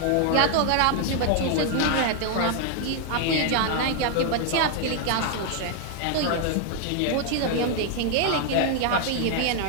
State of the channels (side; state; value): both; different; correlation 0.00